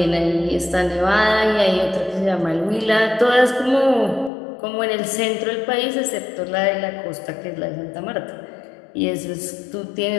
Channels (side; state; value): right; drops out; at 4.3 s